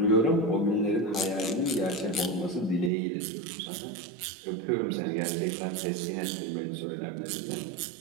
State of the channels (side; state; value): left; drops out; at 2.9 s